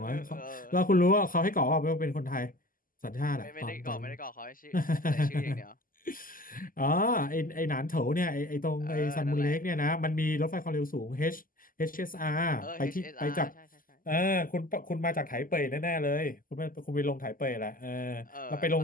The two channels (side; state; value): right; late; 0.41 ms